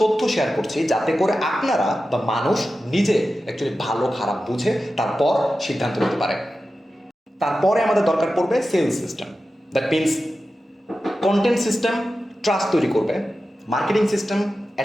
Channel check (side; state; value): both; normal; correlation 0.93